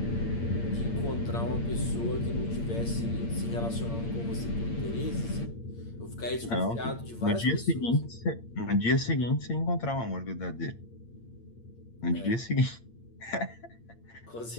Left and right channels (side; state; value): right; late; 8.7 ms